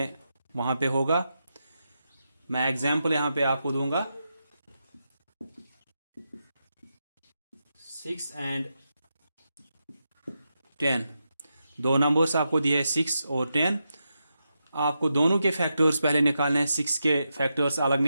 वहां पे होगा। मैं एग्जाम्पल यहां पे आपको दूंगा। 6 एंड 10 दो नंबर्स आपको दिए हैं 6 और 10। आपको दोनों के फैक्टर्स पहले निकालने हैं। 6 के फैक्टर्स अलग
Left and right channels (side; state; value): both; inverted; correlation -0.87